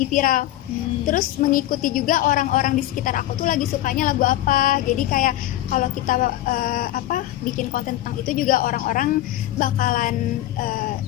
viral. Terus mengikuti juga orang-orang di sekitar aku tuh lagi sukanya lagu apa. Jadi kayak kalau kita bikin konten tentang itu juga orang-orang bakalan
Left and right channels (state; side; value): quieter; right; 14.6 dB